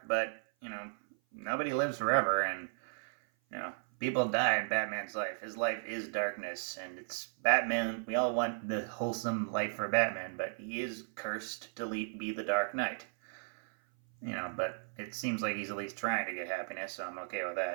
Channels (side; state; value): left; silent; 54 dB below the other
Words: but nobody lives forever, and people die in Batman's life. His life is darkness, and it's Batman. We all want the wholesome life for Batman, but he is cursed to be the Dark Knight. But it seems like he's at least trying to get happiness, so I'm okay with